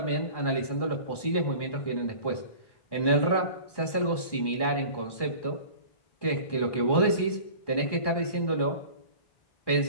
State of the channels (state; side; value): late; right; 1.1 ms